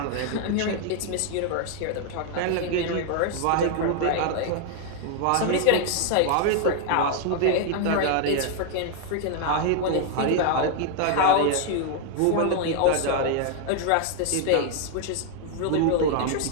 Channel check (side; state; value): both; different; correlation 0.00